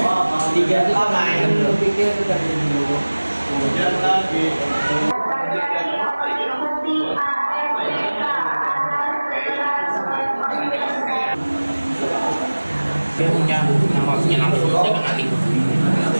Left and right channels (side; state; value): both; inverted; correlation -1.00